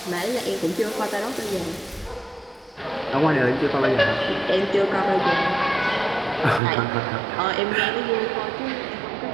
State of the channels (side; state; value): left; drops out; at 6.6 s